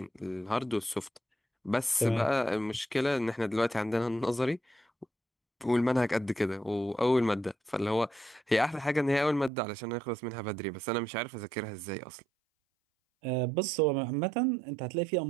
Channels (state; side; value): drops out; left; at 9.5 s